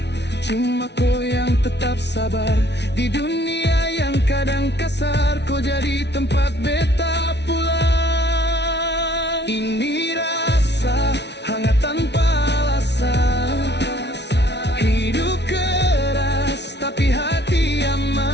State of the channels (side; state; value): right; late; 0.50 ms